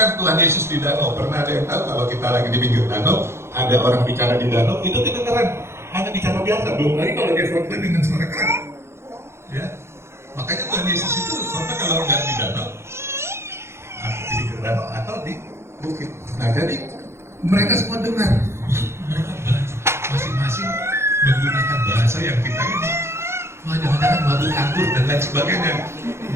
Tuhan Yesus di danau, pernah ada yang tahu kalau kita lagi di pinggir danau, ada orang bicara di danau, itu kedengaran, hanya bicara biasa, belum lagi kalau dia khotbah dengan suara keras, ya. Makanya Tuhan Yesus itu khotbah kalau nggak di danau, di pinggir danau atau di bukit. Nah jadi mereka semua dengar, mereka masing-masing menggunakan bahasa yang kita ini. Wah, jangan-jangan mabuk anggur dan lain sebagainya.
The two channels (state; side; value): late; left; 0.13 ms